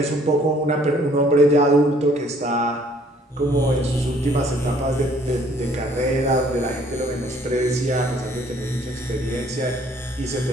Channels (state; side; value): normal; both; correlation 0.60